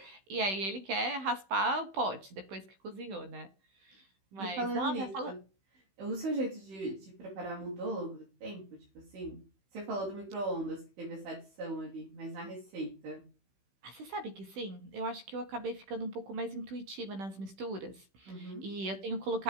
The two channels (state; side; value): late; left; 16 ms